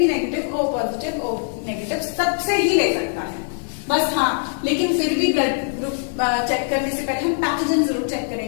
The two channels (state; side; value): silent; right; digital silence